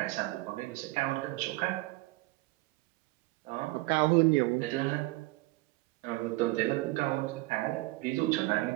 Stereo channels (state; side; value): quieter; left; 21.4 dB